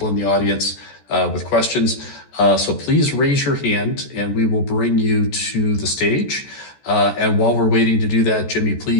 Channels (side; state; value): right; late; 14 ms